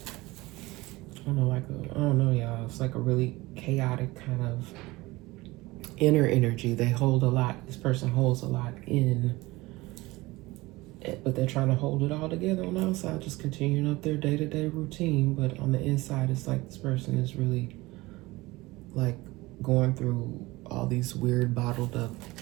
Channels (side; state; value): left; quieter; 20.8 dB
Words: I don't know, y'all. It's like a really chaotic kind of inner energy. They hold a lot. This person holds a lot in, but they're trying to hold it all together on the outside, just continuing up their day-to-day routine. But on the inside, it's like this person is really like going through all these weird bottled up